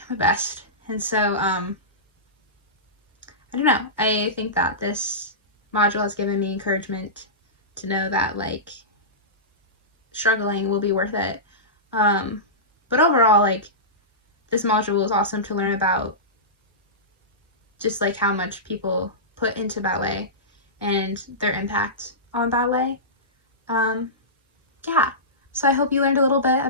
my best. And so I don't know, I think that this module has given me encouragement to know that like struggling will be worth it. But overall, like, this module was awesome to learn about just like how much people put into ballet and their impact on ballet. Yeah, so I hope you learned a little bit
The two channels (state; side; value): normal; both; correlation -0.19